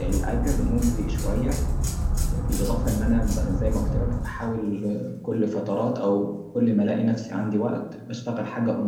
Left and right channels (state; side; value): identical; both; correlation 1.00